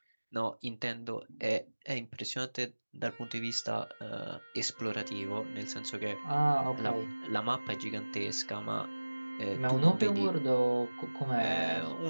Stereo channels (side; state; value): both; inverted; correlation -1.00